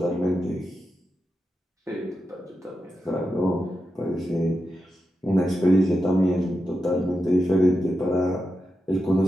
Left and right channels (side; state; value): both; normal; correlation 0.89